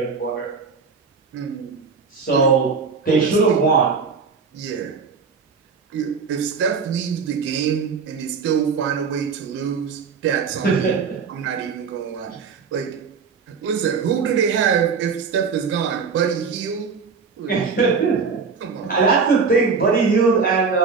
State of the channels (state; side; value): quieter; left; 5.3 dB